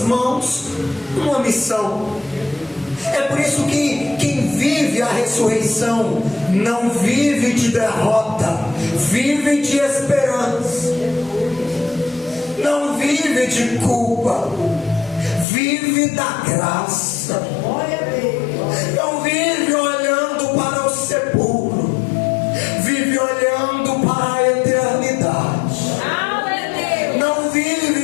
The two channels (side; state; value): right; drops out; at 15.5 s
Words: mãos uma missão. É por isso que quem vive a ressurreição não vive de derrota, vive de esperança. Não vive de culpa, vive da graça. Não vive olhando para o sepulcro, vive olhando para a eternidade. Não